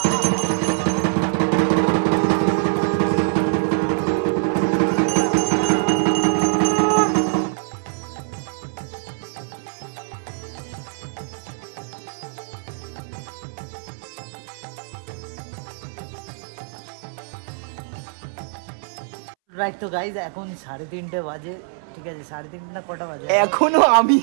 রাইট। তো গাইজ এখন 3:30 বাজে, ঠিক আছে 3:30 না কটা বাজে? এখনো আমি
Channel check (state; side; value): silent; left; 63 dB below the other